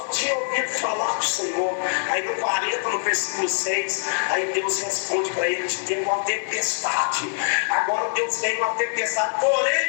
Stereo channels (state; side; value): silent; right; 63 dB below the other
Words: tinha ouvido falar do Senhor. Aí no 40, no versículo 6, aí Deus responde para ele: tem uma tempestade. Agora Deus tem uma tempestade.